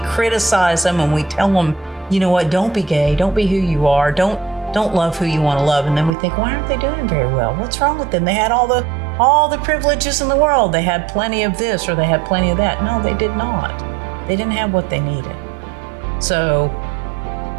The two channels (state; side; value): drops out; left; at 6.1 s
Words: criticize them and we tell them, you know what, don't be gay, don't be who you are, don't love who you want to love, and then we think, why aren't they doing very well? What's wrong with them? They had all the privileges in the world. They had plenty of this or they had plenty of that. No, they did not. They didn't have what they needed. So